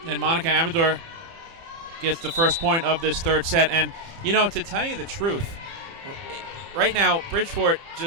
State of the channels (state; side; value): late; left; 30 ms